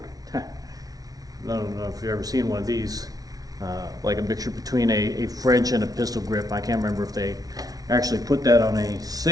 don't know if you've ever seen one of these, like a mixture between a French and a pistol grip. I can't remember if they actually put that on a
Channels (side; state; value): left; late; 0.18 ms